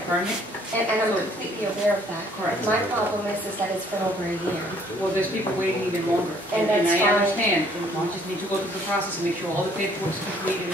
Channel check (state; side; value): normal; both; correlation 0.61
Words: permit. And I'm completely aware of that. Correct. My problem is that it's been over a year. Well, there's people waiting even longer. And that's I fine. understand. And you just need to go through the process and make sure all the paperwork's completed.